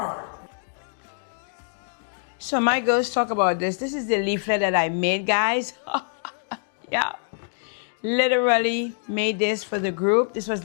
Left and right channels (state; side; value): silent; right; digital silence